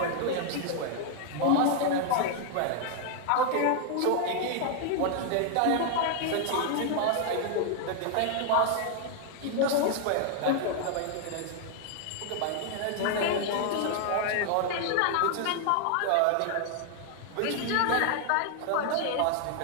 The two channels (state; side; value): different; both; correlation 0.00